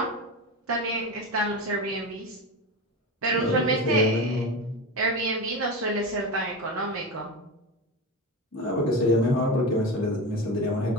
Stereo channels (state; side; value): normal; both; correlation 0.22